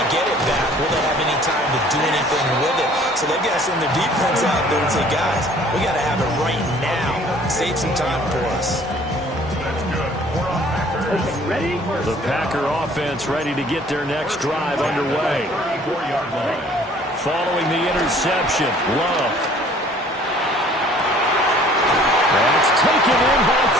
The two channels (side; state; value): both; normal; correlation 0.54